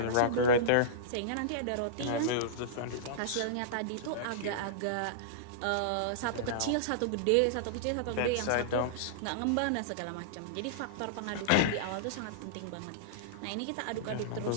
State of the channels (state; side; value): different; both; correlation -0.03